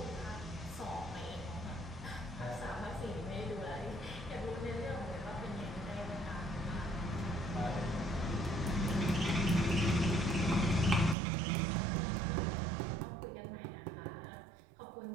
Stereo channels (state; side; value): drops out; left; at 11.2 s